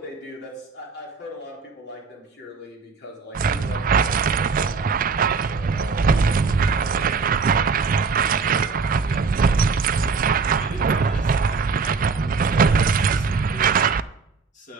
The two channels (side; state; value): left; quieter; 4.9 dB